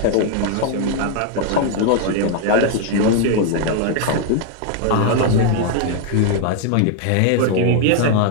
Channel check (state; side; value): different; both; correlation 0.00